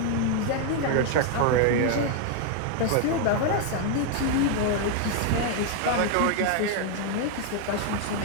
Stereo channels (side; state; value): both; different; correlation 0.00